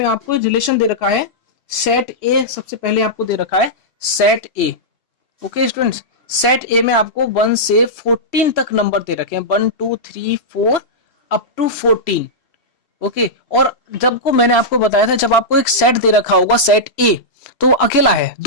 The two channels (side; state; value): right; late; 3.0 ms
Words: आपको रिलेशन दे रखा है सेट ए। सबसे पहले आपको दे रखा है सेट ए। ओके स्टूडेंट्स, सेट ए में आपको 1 से 14 तक नंबर दे रखे हैं, 1 2 3 4 अप टू 14। ओके, और जब को मैंने आपको बताया था, जब आपको एक सेट दे रखा होगा सेट ए, तो अकेला है,